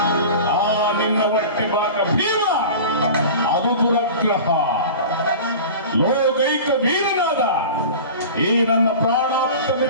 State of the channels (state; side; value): inverted; both; correlation -0.36